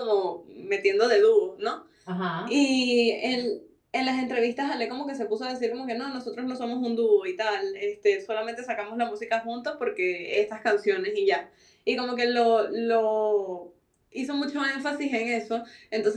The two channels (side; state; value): both; identical; correlation 1.00